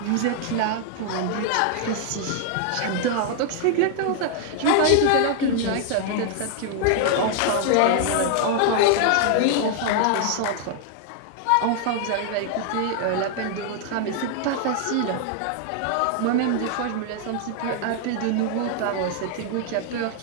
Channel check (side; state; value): both; different; correlation 0.00